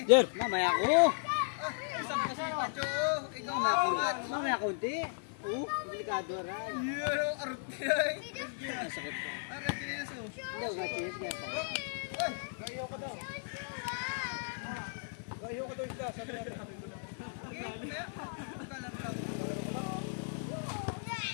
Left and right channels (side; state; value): right; silent; 54 dB below the other